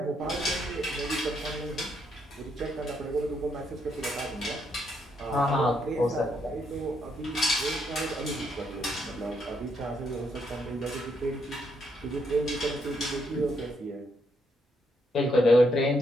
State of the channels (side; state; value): both; normal; correlation 0.76